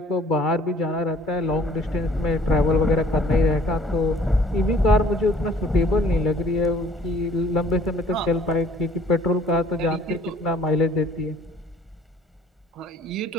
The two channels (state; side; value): normal; both; correlation 0.56